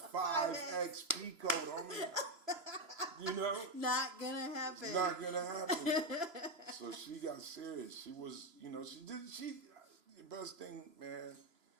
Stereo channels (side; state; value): left; late; 3.0 ms